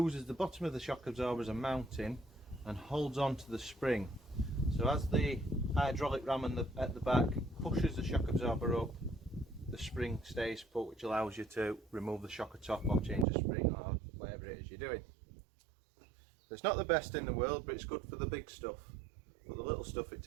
the bottom of the shock absorber as a mounting and holds on to the spring. So as the hydraulic ram at the back pushes the shock absorber up, the spring stays put, which allows you to remove the shocker top or change the spring or whatever it is you're doing. It's not the best in the world, but it's good for the big stuff. But the little stuff it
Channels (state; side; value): drops out; left; at 13.2 s